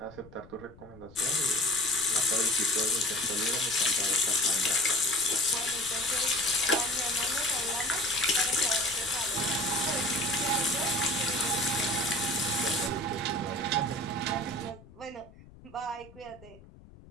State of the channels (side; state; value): left; noise; rumble, 22 dB below the sound